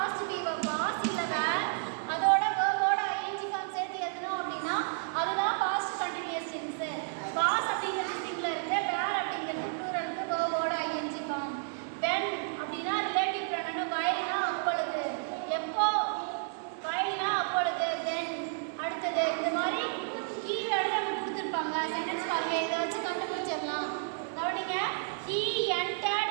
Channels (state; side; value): silent; left; digital silence